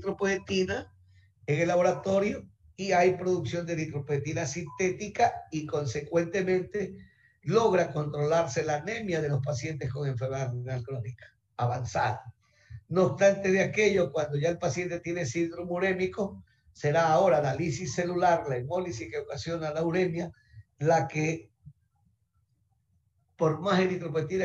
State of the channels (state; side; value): identical; both; correlation 1.00